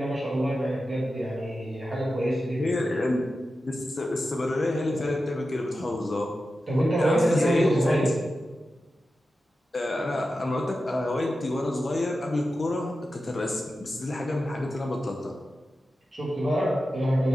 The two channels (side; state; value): both; normal; correlation 0.92